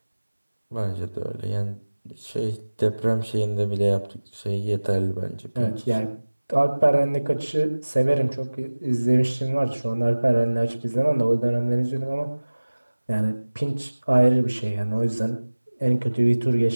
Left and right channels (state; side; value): inverted; both; correlation -1.00